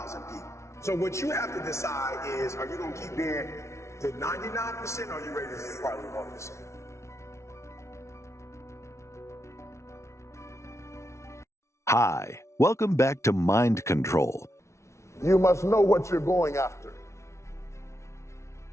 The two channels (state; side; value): late; right; 0.13 ms